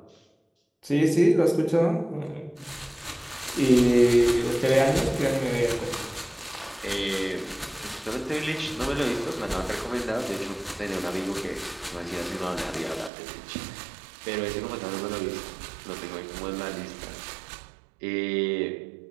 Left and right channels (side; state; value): left; drops out; at 13.1 s